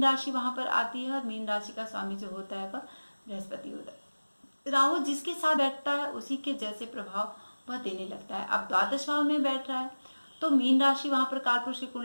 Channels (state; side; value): inverted; both; correlation -1.00